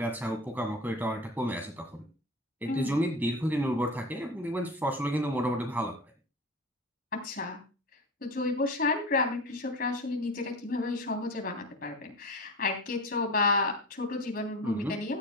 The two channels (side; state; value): both; normal; correlation 0.31